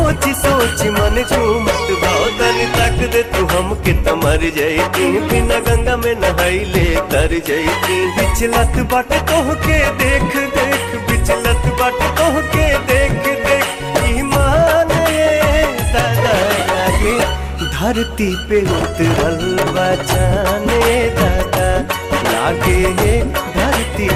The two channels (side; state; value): both; identical; correlation 1.00